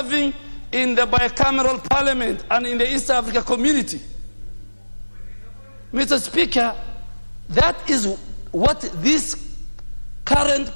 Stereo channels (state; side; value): inverted; both; correlation -1.00